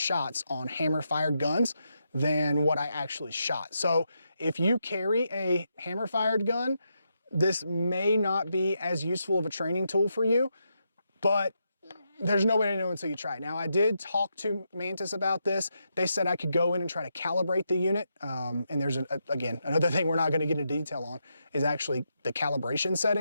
on hammer fired guns than what I actually shot. So if you carry a hammer fired gun, this may not be as useful of a training tool for you, but there's no way to know until you try it. Now, I did talk to Mantis about this. They said I could go in and try to calibrate the unit. And there's, again, another thing we're not going to get into detail on is actually the calibration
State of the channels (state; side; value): inverted; both; correlation -0.83